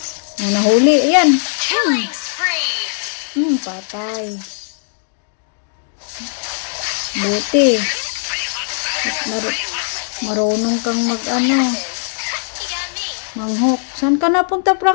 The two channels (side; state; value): right; silent; digital silence